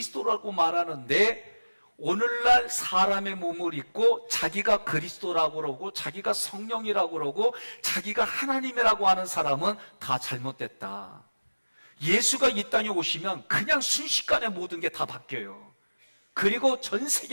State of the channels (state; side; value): inverted; both; correlation -1.00